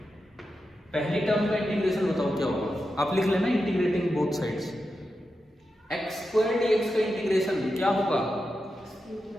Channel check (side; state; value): both; normal; correlation 0.89